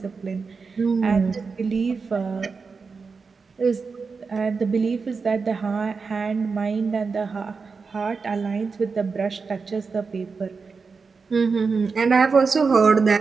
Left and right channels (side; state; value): left; quieter; 4.9 dB